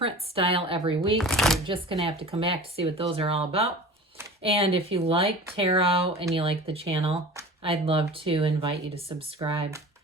style every week. You're just going to have to come back to see what those are all about. And if you like tarot and you like the channel, I'd love to invite you to subscribe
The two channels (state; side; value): normal; both; correlation 0.38